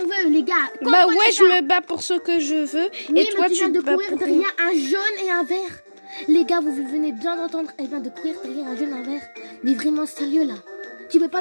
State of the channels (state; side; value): inverted; both; correlation -1.00